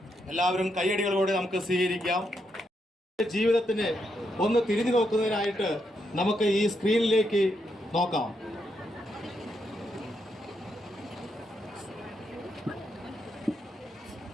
എല്ലാവരും കൈയടികളോടെ നമുക്ക് സ്വീകരിക്കാം. ജീവിതത്തിന് ഒന്ന് തിരിഞ്ഞു നോക്കുന്നതിനായിട്ട് നമുക്ക് ഈ സ്ക്രീനിലേക്ക് നോക്കാം.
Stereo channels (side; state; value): both; normal; correlation 0.80